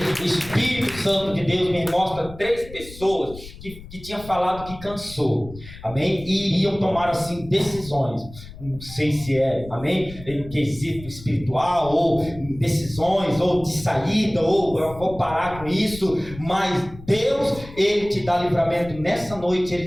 O Espírito Santo de Deus me mostra 3 pessoas que tinham falado que cansou, amém? E iriam tomar assim decisões. Não sei se amém? Em quesito espiritual, ou decisões, ou de saída, ou eu vou parar com isso. Mas Deus, Ele te dá livramento nessa noite. Ele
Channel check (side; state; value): left; noise; rumble, 16 dB below the sound